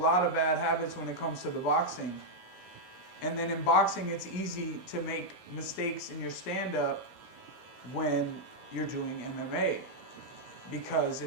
of bad habits when it comes to the boxing. And then in boxing, it's easy to make mistakes in your stand-up when you're doing MMA because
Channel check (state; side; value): late; right; 16 ms